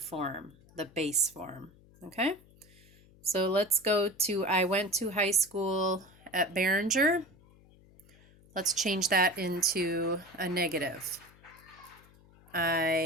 the base form, okay? So let's go to, I went to high school at Behringer. Let's change that into a negative.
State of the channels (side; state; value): left; noise; hum, 26 dB below the sound